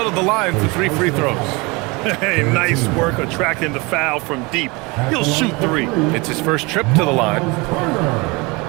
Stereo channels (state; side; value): quieter; left; 26.2 dB